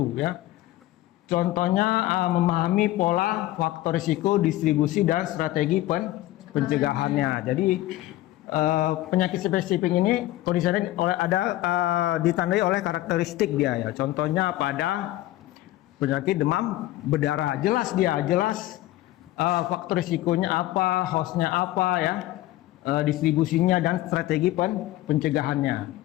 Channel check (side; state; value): right; quieter; 15.9 dB